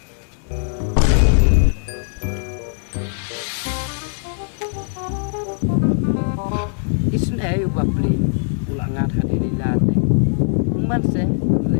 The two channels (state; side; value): silent; right; 66 dB below the other